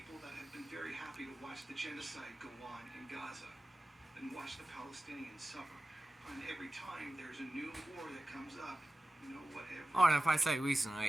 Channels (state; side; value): normal; both; correlation 0.95